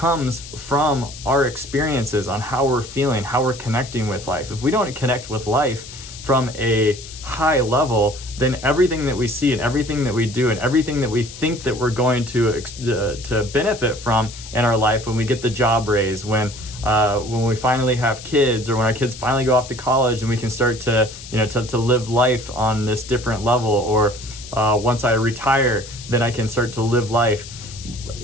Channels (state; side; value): noise; left; hiss, 14 dB below the sound